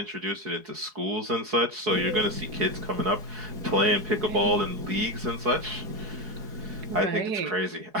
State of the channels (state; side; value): late; left; 4.7 ms